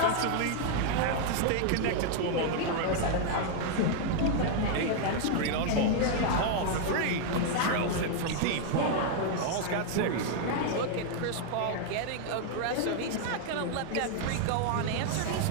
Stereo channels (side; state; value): both; different; correlation 0.00